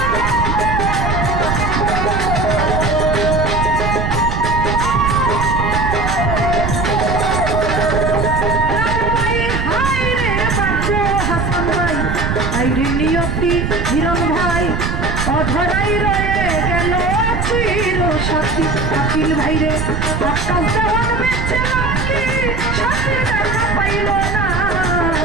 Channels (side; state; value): right; noise; rumble, 2 dB below the sound